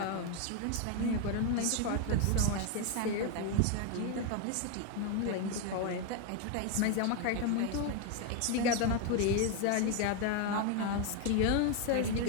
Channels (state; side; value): different; both; correlation 0.01